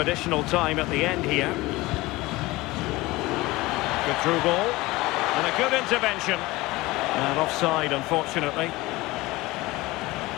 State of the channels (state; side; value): quieter; right; 20.3 dB